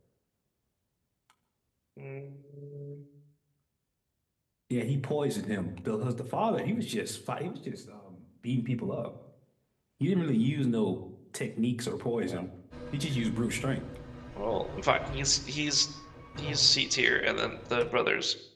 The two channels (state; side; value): identical; both; correlation 1.00